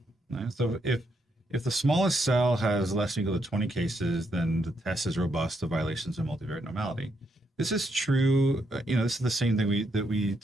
Right? So if the smallest cell has less than or equal to 20 cases, then the test is robust to violations of multivariate normality. This is true. This is the same thing that we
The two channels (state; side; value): normal; both; correlation 0.78